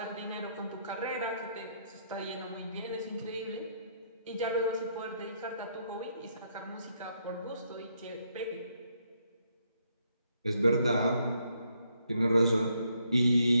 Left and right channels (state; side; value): inverted; both; correlation -0.74